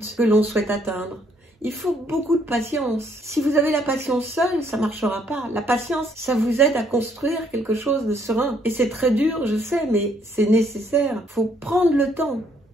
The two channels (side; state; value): both; normal; correlation 0.68